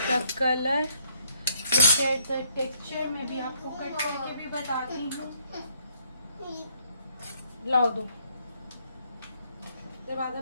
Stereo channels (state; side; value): inverted; both; correlation -0.68